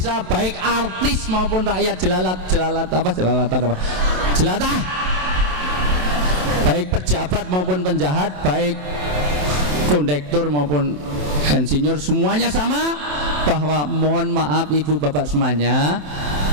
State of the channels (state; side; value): late; left; 27 ms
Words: baik artis maupun rakyat jelatah, baik pejabat maupun penjahat, baik kondektur maupun insinyur, semuanya sama. Bahwa mohon maaf ibu bapak semuanya,